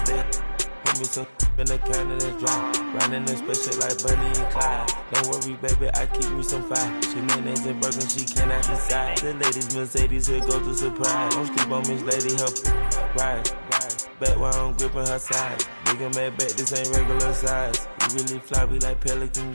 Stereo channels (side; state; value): both; inverted; correlation -1.00